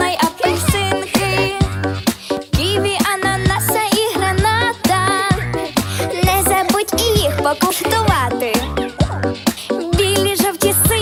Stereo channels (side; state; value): both; identical; correlation 1.00